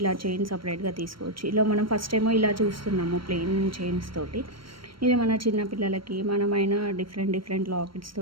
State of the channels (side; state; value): left; late; 0.74 ms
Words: ఇలా చైన్ సపరేట్గా తీసుకోవచ్చు. ఇలా మనం ఫస్ట్ ఏమో ఇలా చూస్తున్నాము ప్లెయిన్ చైన్స్ తోటి. ఇది మన చిన్నపిల్లలకి మనమైనా డిఫరెంట్ లాకెట్స్